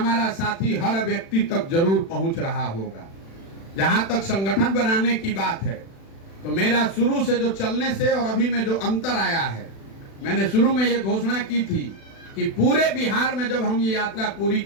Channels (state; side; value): late; right; 36 ms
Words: साथी हर व्यक्ति तक जरूर पहुंच रहा होगा। जहां तक संगठन बनाने की बात है तो मेरा शुरू से जो चलने से और अभी में जो अंतर आया है, मैंने शुरू में ये घोषणा की थी कि पूरे बिहार में जब हम ये यात्रा पूरी